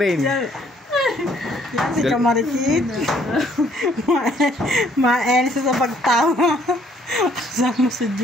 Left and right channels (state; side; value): normal; both; correlation 0.64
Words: Yan si Kamarikit. Maenis sa pagtawa. Sama si